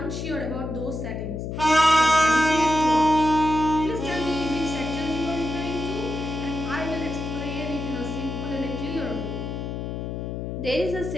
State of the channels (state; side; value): noise; left; hum, 5 dB below the sound